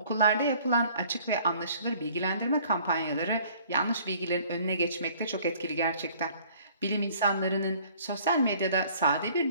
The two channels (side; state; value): both; inverted; correlation -0.55